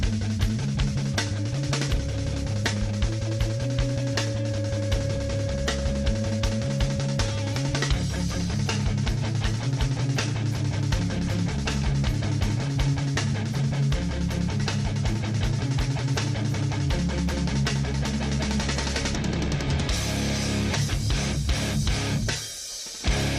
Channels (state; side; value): identical; both; correlation 1.00